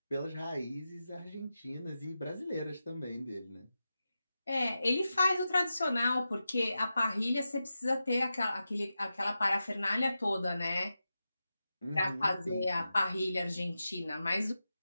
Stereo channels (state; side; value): inverted; both; correlation -0.91